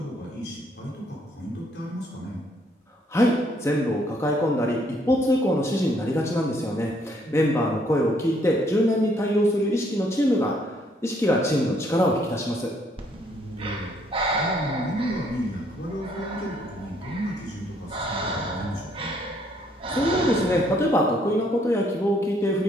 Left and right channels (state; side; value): normal; both; correlation 0.67